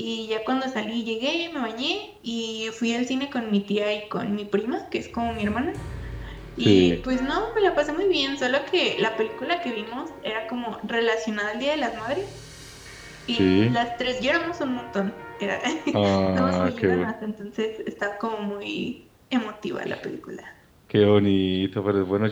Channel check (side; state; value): both; identical; correlation 1.00